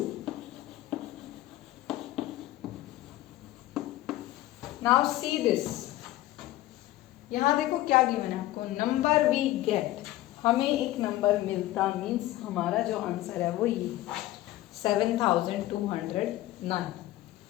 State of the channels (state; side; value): quieter; right; 15.9 dB